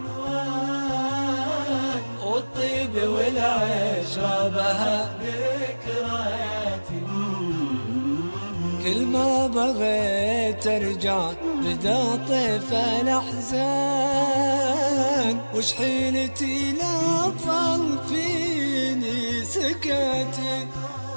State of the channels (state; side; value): inverted; both; correlation -1.00